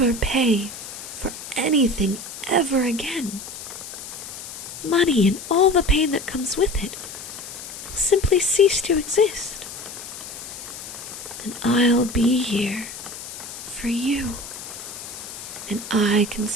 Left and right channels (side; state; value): left; noise; hiss, 11 dB below the sound